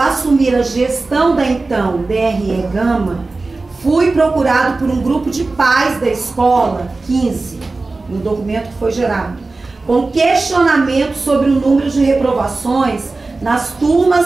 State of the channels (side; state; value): left; quieter; 3.5 dB